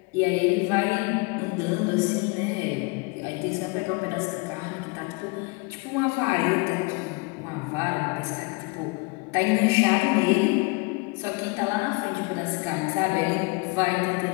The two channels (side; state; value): right; quieter; 27.9 dB